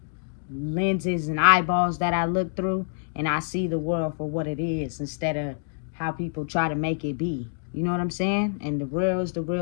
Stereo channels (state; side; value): silent; right; digital silence